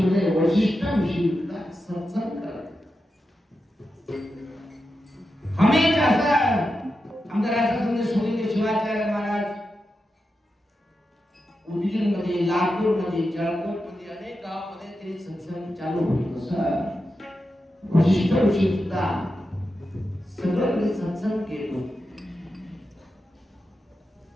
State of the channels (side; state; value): both; normal; correlation 0.89